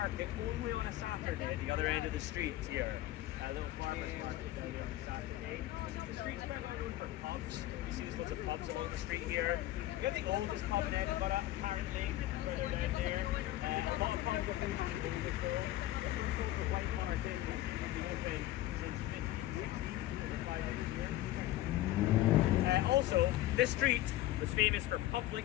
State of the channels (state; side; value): quieter; right; 15.1 dB